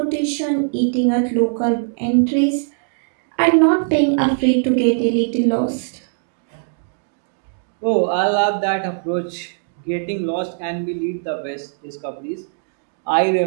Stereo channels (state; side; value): silent; left; digital silence